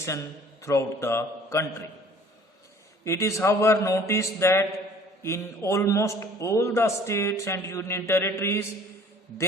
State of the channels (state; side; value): normal; both; correlation 0.51